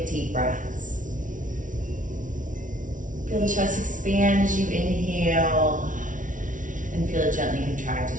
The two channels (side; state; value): left; late; 0.38 ms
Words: deep breaths. Feel the chest expand as you inhale and feel it gently contract